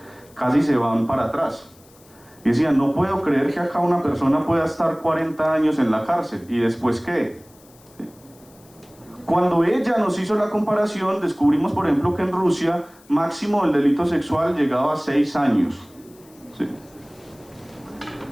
casi se van para atrás. Y decían, no puedo creer que acá una persona pueda estar 40 años en la cárcel, ¿y después qué? Cuando ella nos hizo la comparación, descubrimos, por ejemplo, que en Rusia máximo el delito sexual llegaba a 6 años. ¿Sí?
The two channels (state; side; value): noise; left; hiss, 27 dB below the sound